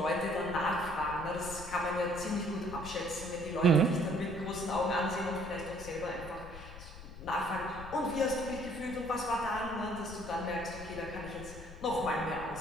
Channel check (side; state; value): left; noise; rumble, 13 dB below the sound